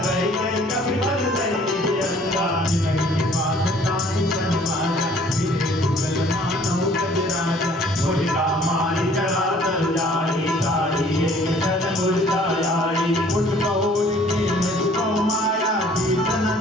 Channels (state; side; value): normal; both; correlation 0.56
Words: गए कभी बल दई अंगा जिनकी बात ताई संवारा फिरे दुगल मानव गजराजा मुर्गा मारी चढ़ा तर जाई गाड़ी एक तन मुर्गा आई उठ कौल की मुझको माया जीतन